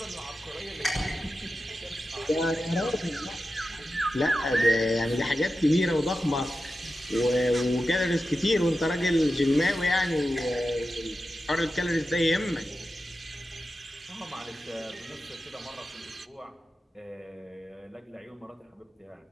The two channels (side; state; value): both; normal; correlation 0.92